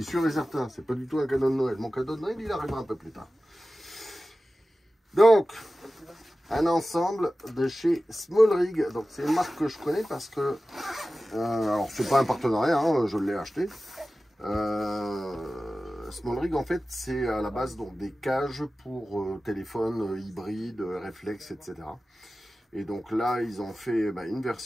et certain, c'est pas du tout un cadeau de Noël. Mon cadeau de Noël, il arrivera un peu plus tard. Donc, un ensemble de chez Small Rig. Donc, c'est une marque que je connais parce que... alors, c'est pas un partenariat, hein, je l'ai acheté. Small Rig, en fait, c'est à la base donc, des cages pour téléphone hybride, réflexe, etc. Et donc là, ils ont fait une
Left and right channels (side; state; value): both; normal; correlation 0.95